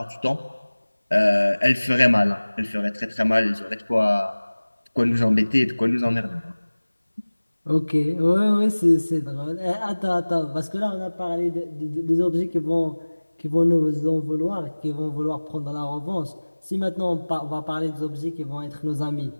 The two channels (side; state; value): both; inverted; correlation -1.00